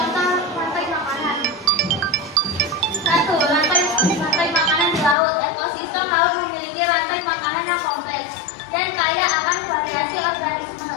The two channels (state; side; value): drops out; right; at 5.2 s